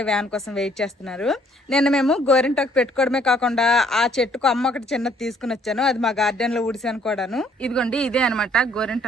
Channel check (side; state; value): both; normal; correlation 0.63